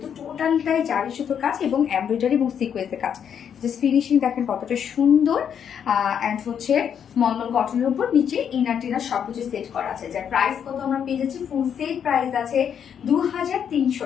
টোটালটাই জারি সুতোর কাজ এবং এমব্রয়ডারি এবং সিকোয়েন্সের কাজ। জাস্ট ফিনিশিং দেখেন কতটা সুন্দর। অ্যান্ড হচ্ছে মলমল কটনের উপর নিচে ইনার টিনার সবকিছু সেট করা আছে। যার প্রাইস কত আমরা পেয়ে যাচ্ছি, ফুল সেট প্রাইস আছে 2300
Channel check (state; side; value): quieter; right; 8.2 dB